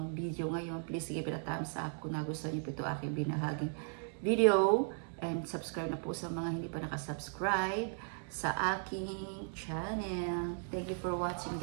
video ngayon. Please give it a thumbs up kung nagustuhan niyo po ito aking binahaging video. And subscribe na po sa mga hindi pa nakasubscribe sa aking channel. Thank you for watching,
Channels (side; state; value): left; silent; 53 dB below the other